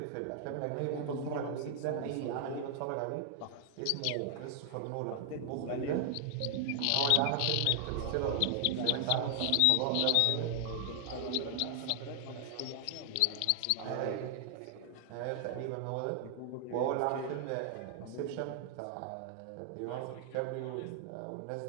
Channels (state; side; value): different; both; correlation 0.00